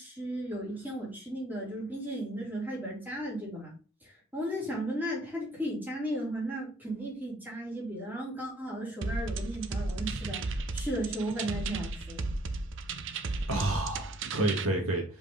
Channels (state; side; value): normal; both; correlation 0.61